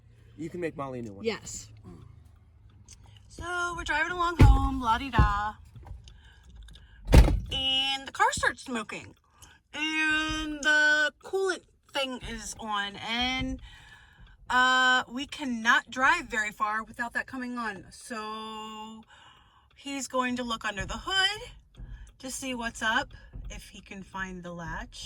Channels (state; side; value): identical; both; correlation 1.00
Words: can make Molly a new one. Yes. So, we're driving along home, la-di-da. And the car starts smoking. And the coolant thing is on. And we cannot drive very far without that coming on. So, he's going to look under the hood to see what's up, if he can find the